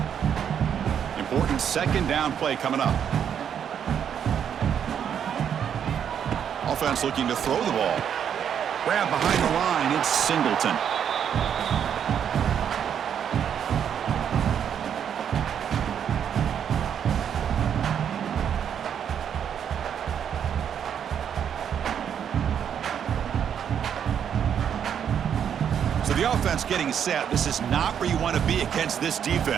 Important second down play coming up. Offense looking to throw the ball. Grab behind the line, it's Singleton. So the offense getting set. This is not where you want to be against this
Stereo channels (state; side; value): quieter; left; 8.5 dB